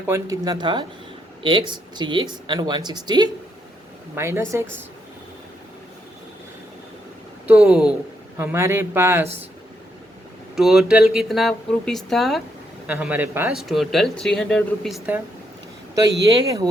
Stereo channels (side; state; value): both; normal; correlation 0.77